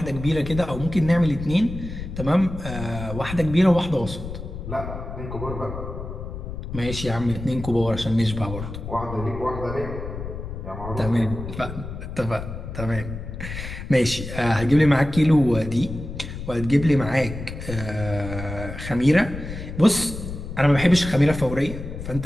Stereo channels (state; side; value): noise; left; rumble, 9 dB below the sound